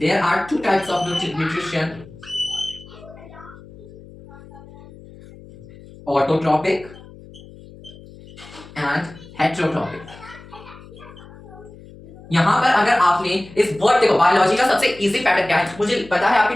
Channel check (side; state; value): left; noise; hum, 19 dB below the sound